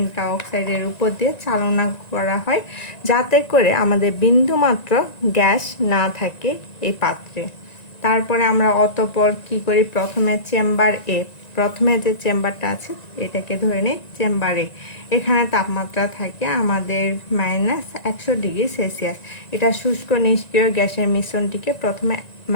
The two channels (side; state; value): right; late; 1.9 ms